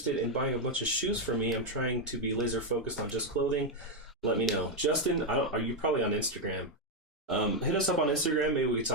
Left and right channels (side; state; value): both; normal; correlation 0.02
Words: in buying a bunch of shoes for me? I'm trying to be laser focused on just clothing. Let me know." Justin, are you probably on Instagram? Hit us up on Instagram. Maybe we could